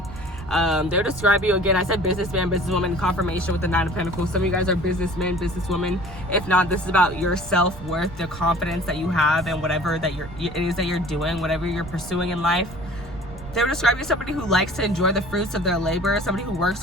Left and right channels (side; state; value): right; noise; rumble, 16 dB below the sound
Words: They'll describe you, again, I said businessman, businesswoman, confirmation with the 9 of Pentacles. Some of you guys are businessmen, businesswomen. If not, this is about your self-worth, the confidence that you have in whatever it is that you're doing, whatever you're pursuing in life. They would describe you as somebody who likes to enjoy the fruits of their labor, somebody who works